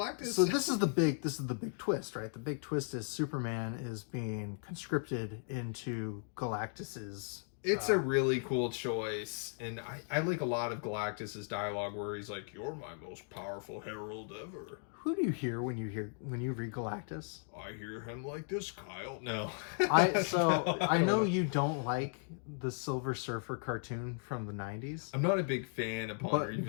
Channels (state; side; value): silent; right; 53 dB below the other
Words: So this is the big twist, right? The big twist is Superman is being conscripted into Galactus's... It's a really cool choice, and I like a lot of Galactus's dialogue where he's like, "You're my most powerful herald ever." Who do you hear when you read Galactus? I hear him like this, Kyle. No. I know you don't like the Silver Surfer cartoon from the 90s. I'm not a big fan upon